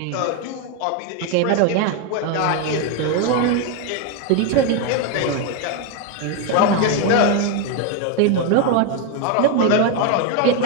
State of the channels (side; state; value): both; different; correlation 0.02